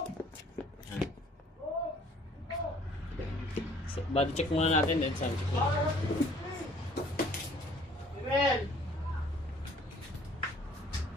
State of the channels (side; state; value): both; normal; correlation 0.56